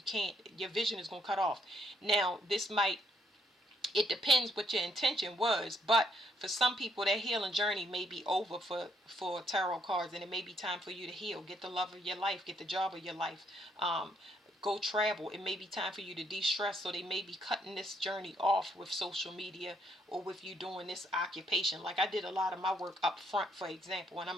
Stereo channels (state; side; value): normal; both; correlation 0.71